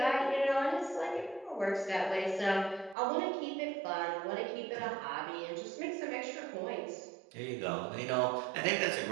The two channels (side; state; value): left; drops out; at 3.0 s